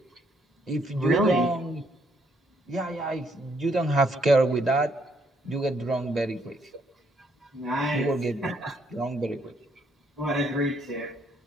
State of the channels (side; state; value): both; normal; correlation 0.71